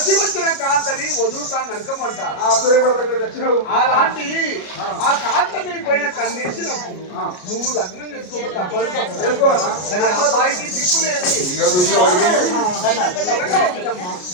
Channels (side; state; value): right; late; 33 ms